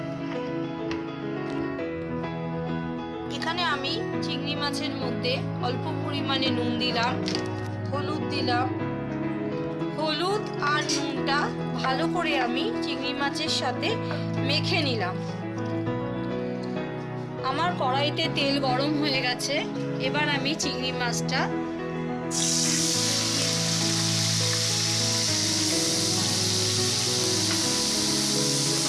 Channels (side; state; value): both; identical; correlation 1.00